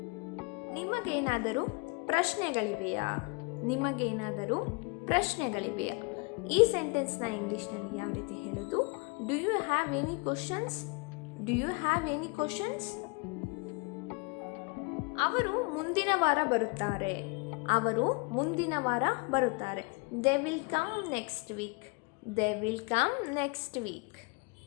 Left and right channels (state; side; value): quieter; right; 29.6 dB